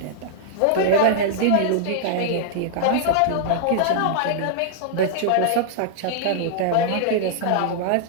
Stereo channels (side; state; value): both; different; correlation -0.01